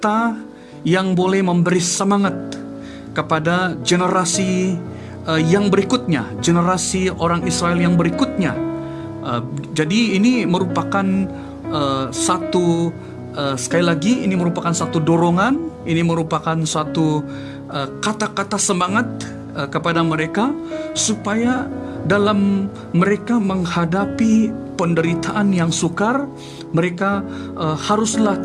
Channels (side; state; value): both; identical; correlation 1.00